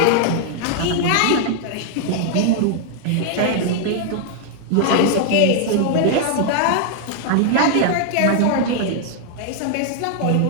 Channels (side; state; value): both; different; correlation 0.00